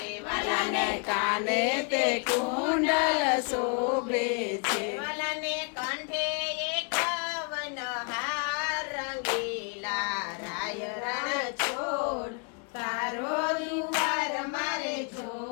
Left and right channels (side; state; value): right; quieter; 38.1 dB